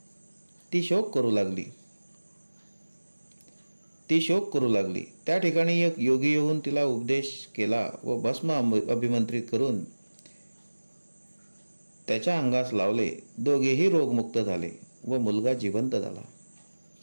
ती शोक करू लागली. त्या ठिकाणी एक योगी येऊन तिला उपदेश केला व भस्म अभिमंत्रित करून त्याच्या अंगास लावले. दोघेही रोगमुक्त झाले व मुलगा जिवंत झाला.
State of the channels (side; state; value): both; inverted; correlation -1.00